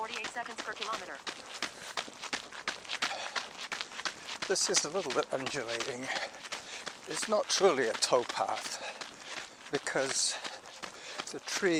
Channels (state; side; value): identical; both; correlation 1.00